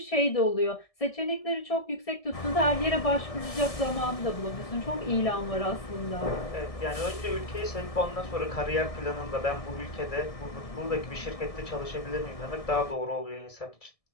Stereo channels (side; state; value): right; late; 1.7 ms